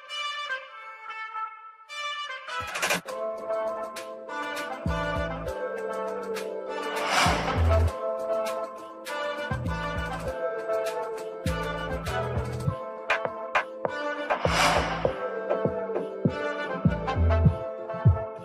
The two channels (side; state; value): both; identical; correlation 1.00